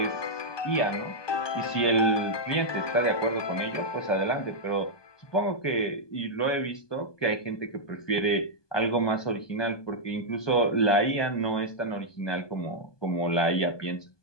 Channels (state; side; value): late; right; 1.2 ms